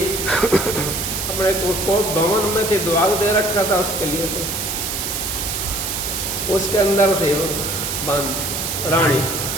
अपने को भवन में थी, दुआग दे रखा था उसके लिए, तो उसके अंदर थे वो बांद रानी।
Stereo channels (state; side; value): noise; right; hiss, 3 dB below the sound